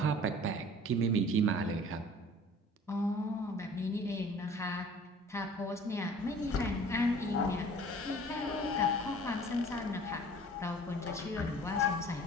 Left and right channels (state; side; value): normal; both; correlation 0.47